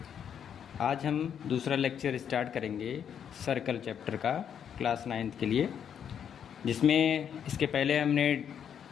आज हम दूसरा लेक्चर स्टार्ट करेंगे सर्कल चैप्टर का क्लास 9th के लिए, जिसमें इसके पहले हमने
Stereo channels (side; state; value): right; quieter; 8.4 dB